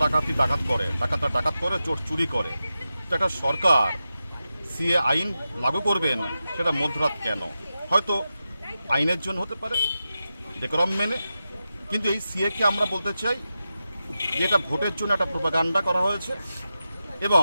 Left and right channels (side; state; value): both; inverted; correlation -0.91